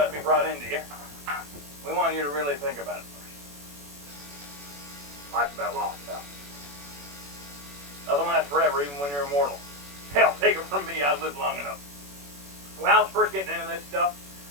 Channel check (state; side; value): late; left; 21 ms